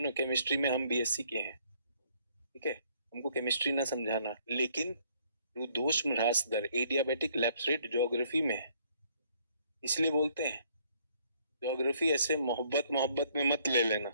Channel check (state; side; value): inverted; both; correlation -0.64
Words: केमिस्ट्री में हम बीएससी के हैं, ठीक है, हमको केमिस्ट्री ना समझाना। लेकिन रुद्धोष्म ह्रास दर, एडियाबेटिक लैप्स रेट ज्योग्राफी में है, इसलिए बोलते हैं। ज्योग्राफी ऐसे मोहब्बत में मत ले लेना,